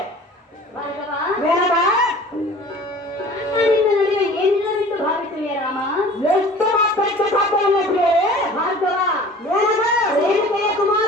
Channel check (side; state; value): both; normal; correlation 0.45